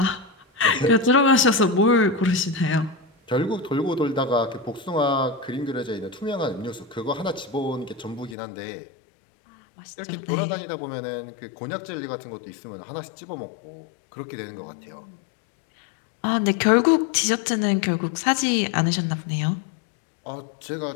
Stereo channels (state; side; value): drops out; right; at 8.3 s